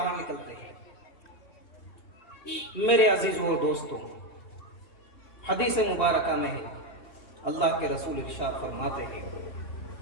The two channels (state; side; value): late; right; 2.7 ms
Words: نکلتے ہیں۔ میرے عزیزوں اور دوستوں، حدیث مبارکہ میں اللہ کے رسول ارشاد فرماتے ہیں